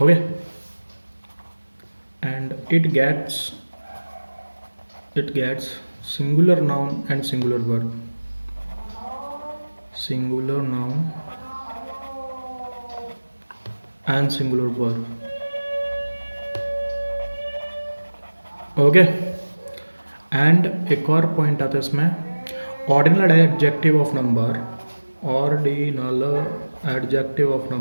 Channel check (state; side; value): inverted; both; correlation -1.00